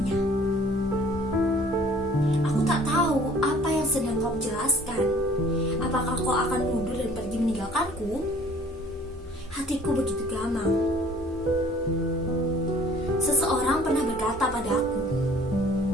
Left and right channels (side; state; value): both; normal; correlation 0.53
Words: Aku tak tahu apa yang sedang kau jelaskan. Apakah kau akan mundur dan pergi meninggalkanku? Hatiku begitu gamang. Seseorang pernah berkata padaku,